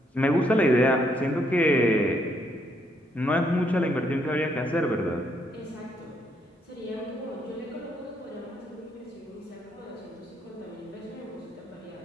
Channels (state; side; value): normal; both; correlation 0.73